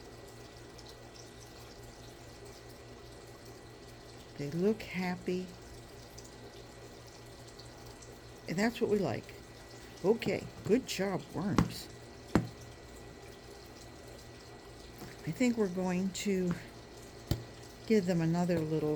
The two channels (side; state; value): both; identical; correlation 1.00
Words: They look happy. And that's what we like. Okay, good job, worms. I think we're going to give them another